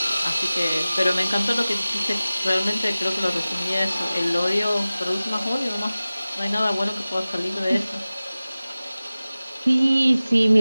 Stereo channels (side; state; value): both; inverted; correlation -0.97